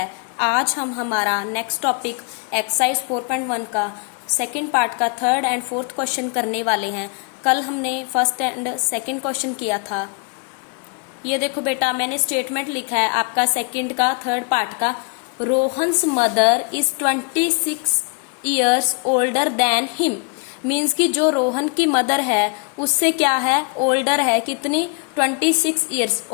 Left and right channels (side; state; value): right; quieter; 36.7 dB